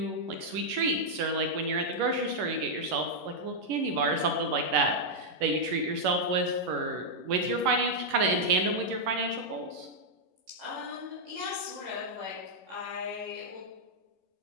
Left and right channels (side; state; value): left; late; 11 ms